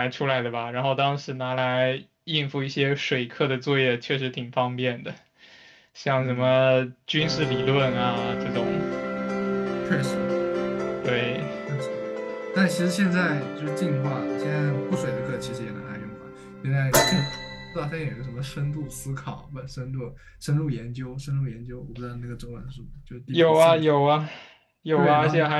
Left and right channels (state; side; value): identical; both; correlation 1.00